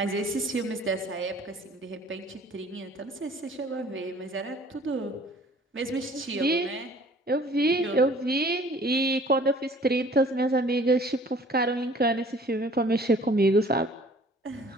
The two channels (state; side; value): normal; both; correlation 0.52